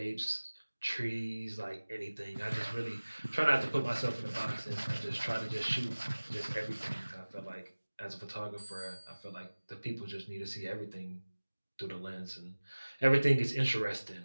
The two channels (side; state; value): both; inverted; correlation -1.00